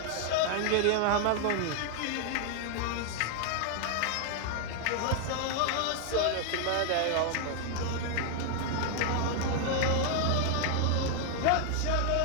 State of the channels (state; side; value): different; both; correlation 0.00